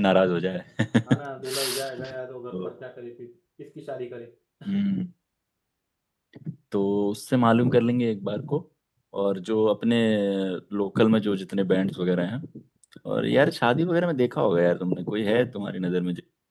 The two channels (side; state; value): both; identical; correlation 1.00